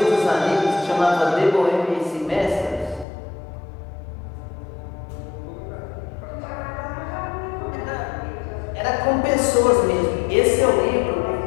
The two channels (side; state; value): right; drops out; at 3.1 s